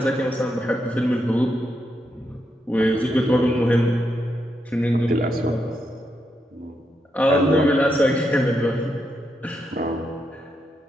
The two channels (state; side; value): normal; both; correlation 0.82